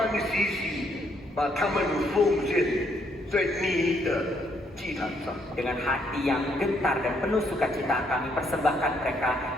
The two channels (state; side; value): normal; both; correlation 0.71